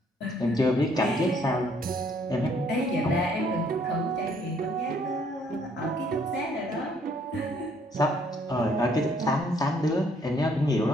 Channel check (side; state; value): both; normal; correlation 0.65